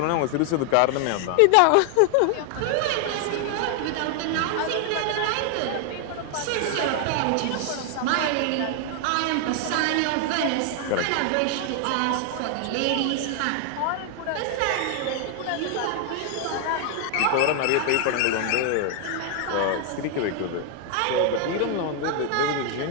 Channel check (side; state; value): both; different; correlation 0.00